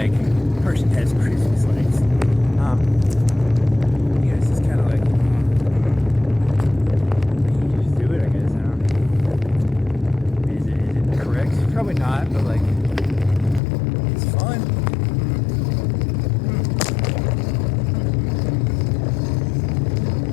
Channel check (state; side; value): drops out; right; at 13.6 s